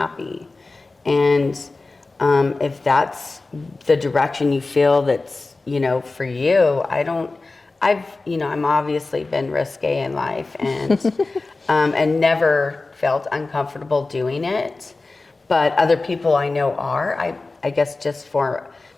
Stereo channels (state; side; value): quieter; right; 3.5 dB